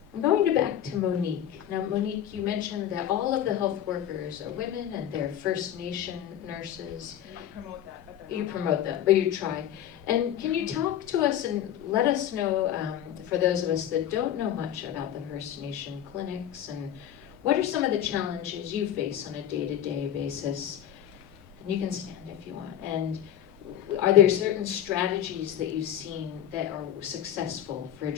I'm going back to Monique. Now, Monique, you mentioned that all of the health workers are women and they're First Nation nurses. You promote that, but You promote that, but you try. And can you talk to us and let us know, for those of us that don't know much about the First Nation clinics, and what are some of the challenges you face on a day-to-day basis? And you can stand if you want. And are there certain strategies that you've seen that are successful for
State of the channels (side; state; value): right; quieter; 10.6 dB